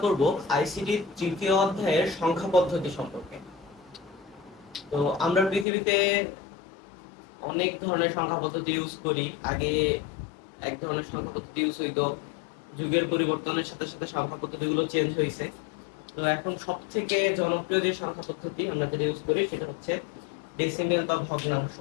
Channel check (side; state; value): right; drops out; at 5.7 s